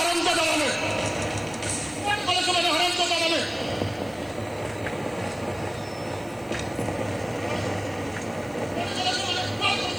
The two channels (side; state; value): right; noise; hiss, 25 dB below the sound